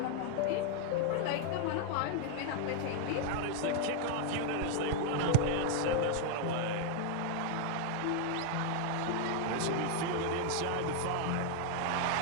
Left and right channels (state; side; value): different; both; correlation 0.00